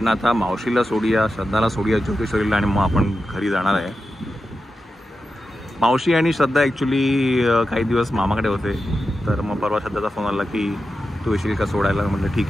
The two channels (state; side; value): normal; both; correlation 0.90